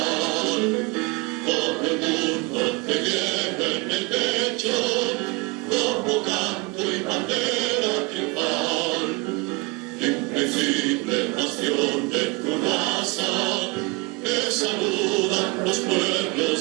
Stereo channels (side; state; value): left; quieter; 27.3 dB